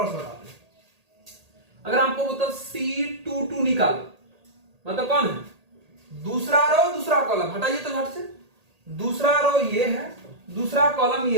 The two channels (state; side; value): late; left; 1.8 ms